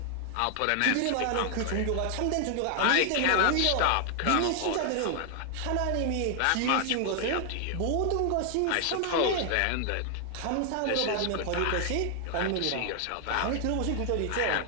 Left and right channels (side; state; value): both; different; correlation 0.00